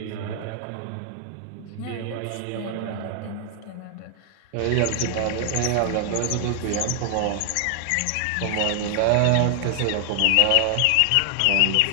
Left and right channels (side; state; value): both; different; correlation 0.00